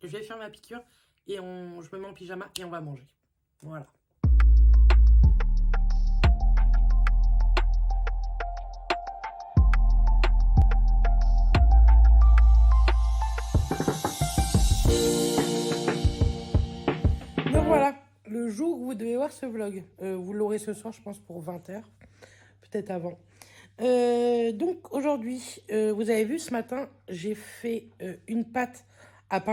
Je vais faire ma piqûre et je me mets en pyjama et on va manger. Voilà. Donc voilà, le jour où vous devez voir ce vlog. Vous l'aurez ce soir, je pense, pour 20h. Peut-être avant. Donc aujourd'hui, vous avez vu ce matin, j'ai fait une pâte à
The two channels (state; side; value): identical; both; correlation 1.00